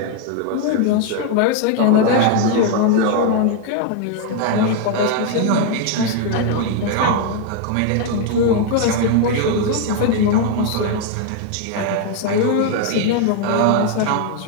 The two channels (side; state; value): both; different; correlation 0.00